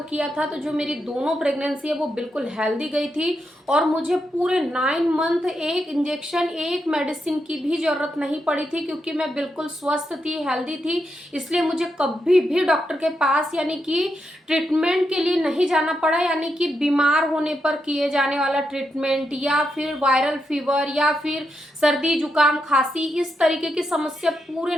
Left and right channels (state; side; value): normal; both; correlation 0.83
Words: किया था। तो जो मेरी दोनों प्रेगनेंसी है वो बिल्कुल हेल्दी गई थी और मुझे पूरे 9 मंथ एक इंजेक्शन एक मेडिसिन की भी जरूरत नहीं पड़ी थी, क्योंकि मैं बिल्कुल स्वस्थ थी, हेल्दी थी। इसलिए मुझे कभी भी डॉक्टर के पास यानी कि ट्रीटमेंट के लिए नहीं जाना पड़ा, यानी कि बीमार होने पर किए जाने वाला ट्रीटमेंट या फिर वायरल फीवर या फिर सर्दी जुकाम खांसी इस तरीके की समस्या पूरे